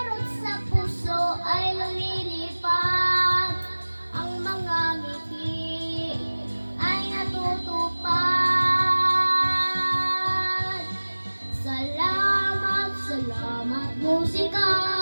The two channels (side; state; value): both; inverted; correlation -1.00